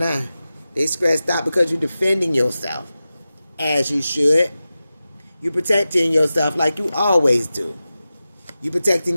They stressed out because you're defending yourself. As you should. You're protecting yourself like you always do. You're protecting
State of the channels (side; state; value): both; inverted; correlation -0.94